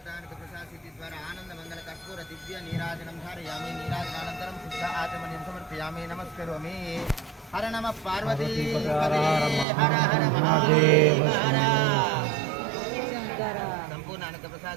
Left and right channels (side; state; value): left; drops out; at 9.7 s